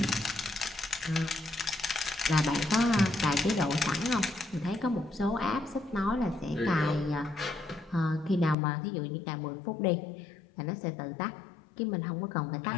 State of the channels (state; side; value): drops out; right; at 8.6 s